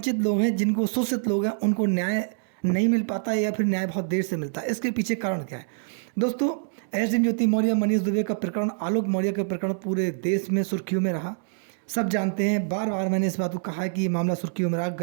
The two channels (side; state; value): left; silent; digital silence